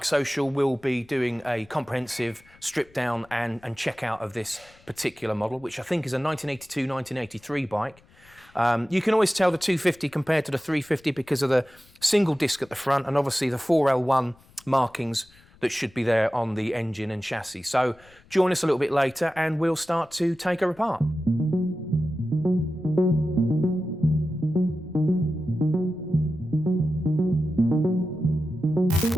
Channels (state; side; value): noise; left; rumble, 28 dB below the sound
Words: will be doing a comprehensive strip down and check out of this particular model, which I think is a 1982-1983 bike. You can always tell the 250 compared to the 350 because of the single disc at the front and obviously the 4L1 markings that should be there on the engine and chassis. So join us a little bit later and we'll start to take her apart.